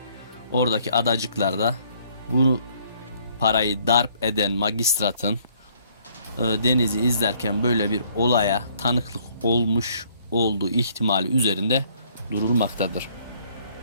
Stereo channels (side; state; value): both; inverted; correlation -0.63